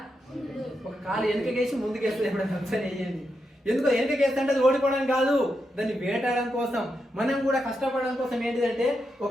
ఒక కాలు వెనకకేసి ముందుకేస్తుంది. ఎప్పుడైనా ఒకసారి వేయండి. ఎందుకో వెనకకేస్తే అంటే అది ఓడిపోవడానికి కాదు, దాన్ని వేటాడడం కోసం. మనం కూడా కష్టపడడం కోసం ఏంటిదంటే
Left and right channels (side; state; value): both; normal; correlation 0.85